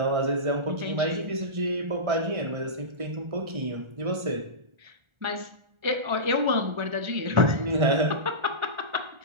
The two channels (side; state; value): left; late; 1.4 ms